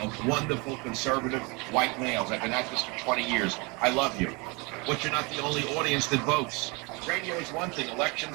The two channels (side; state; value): left; quieter; 28.8 dB